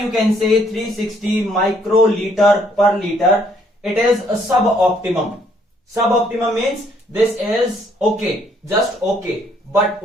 you can say 360 microliter per liter. It is a suboptimum. Suboptimum means this is okay, just okay. But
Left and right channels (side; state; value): both; normal; correlation 0.66